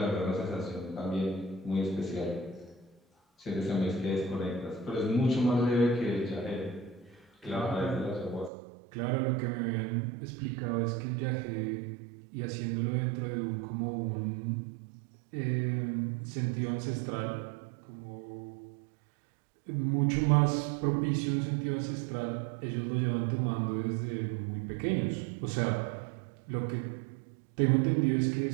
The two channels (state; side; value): drops out; left; at 8.5 s